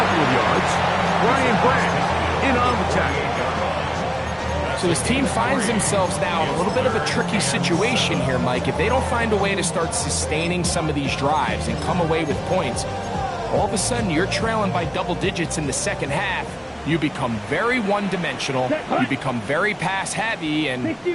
of yards. Ryan Brand in on the tackle. So his team finds themselves now in a little bit of a tricky situation here, Mike. If they don't find a way to start sustaining some of these drives and come away with points, all of a sudden you're trailing by double digits in the second half. You become very one-dimensional, you become very pass-heavy, and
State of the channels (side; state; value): both; identical; correlation 1.00